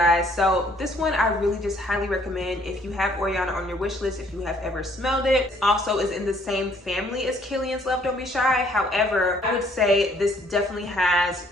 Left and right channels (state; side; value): normal; both; correlation 0.62